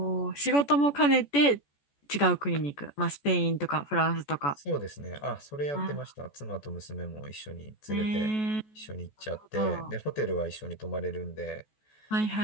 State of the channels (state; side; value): late; right; 14 ms